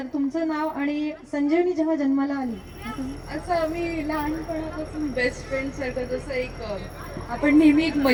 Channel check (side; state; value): both; identical; correlation 1.00